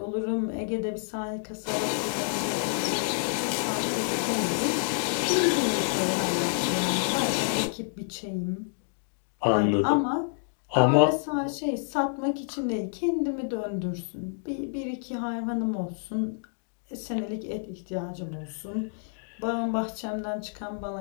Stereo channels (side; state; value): right; silent; digital silence